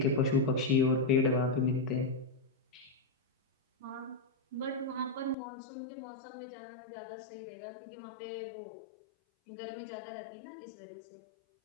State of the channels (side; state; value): right; drops out; at 5.4 s